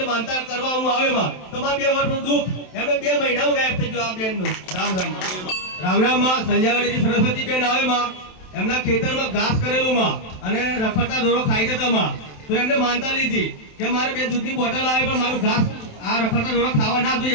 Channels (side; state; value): right; late; 27 ms